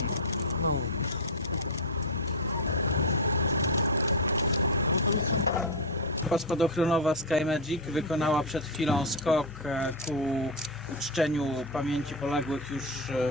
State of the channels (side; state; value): both; normal; correlation 0.07